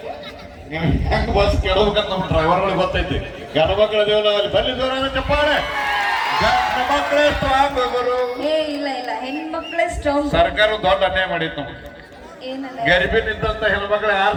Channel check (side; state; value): both; identical; correlation 1.00